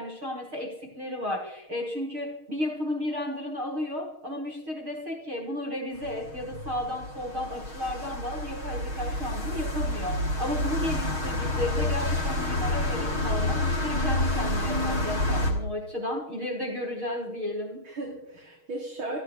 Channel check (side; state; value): left; late; 6.4 ms